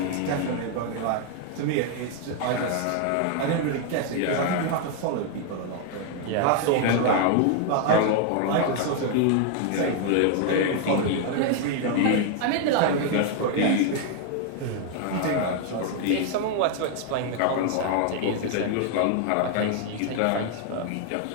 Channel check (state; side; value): different; both; correlation 0.00